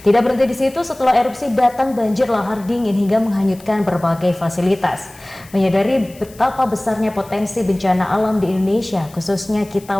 Tidak berhenti di situ, setelah erupsi datang banjir lahar dingin hingga menghanyutkan berbagai fasilitas. Menyadari betapa besarnya potensi bencana alam di Indonesia, khususnya kita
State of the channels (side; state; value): left; noise; hiss, 23 dB below the sound